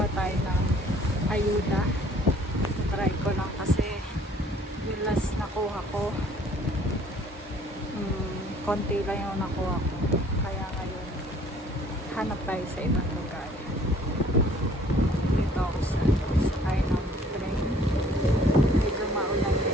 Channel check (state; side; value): normal; both; correlation 0.57